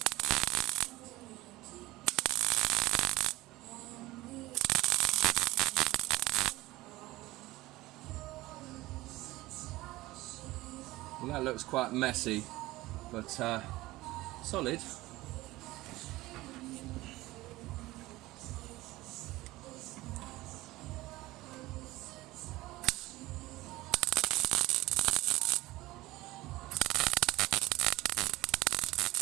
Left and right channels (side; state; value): left; quieter; 18.7 dB